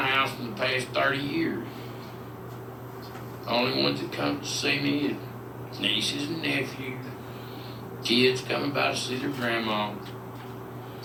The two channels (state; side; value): identical; both; correlation 1.00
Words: in the past 30 years. The only ones that come to see me is nieces and nephews, kids coming by to see their grandma.